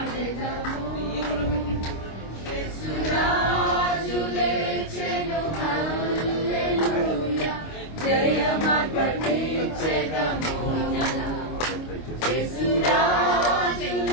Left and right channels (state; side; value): late; right; 25 ms